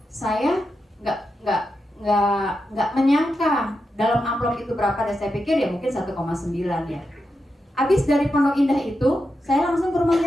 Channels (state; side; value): normal; both; correlation 0.87